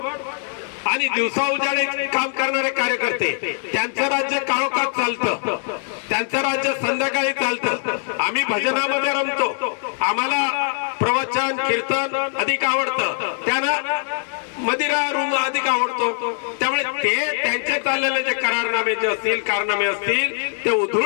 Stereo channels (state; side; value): silent; right; 63 dB below the other